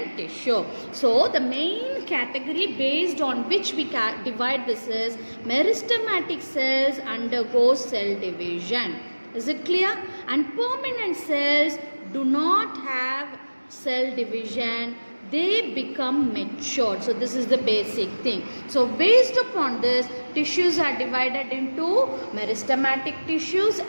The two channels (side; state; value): both; inverted; correlation -1.00